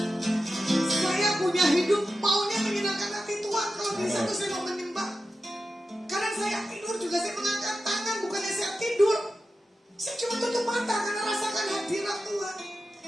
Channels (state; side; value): normal; both; correlation 0.92